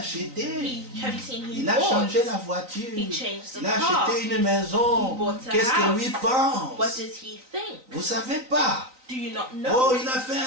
Have you seen he Il a changé la bought? voiture. He changed the Il a car. acheté une maison. He bought a Qu'est-ce que lui house. pense? What does he think? Vous savez pas? Do you not Oh, know? il a fait un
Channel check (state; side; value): late; left; 3.9 ms